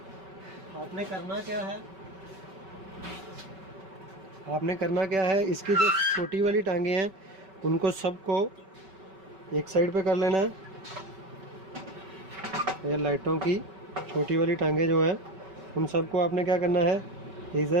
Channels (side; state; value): left; late; 5.3 ms